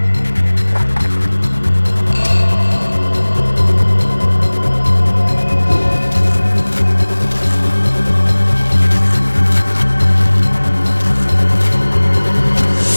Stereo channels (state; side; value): inverted; both; correlation -1.00